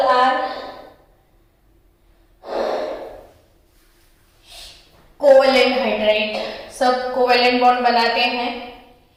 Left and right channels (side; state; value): both; identical; correlation 1.00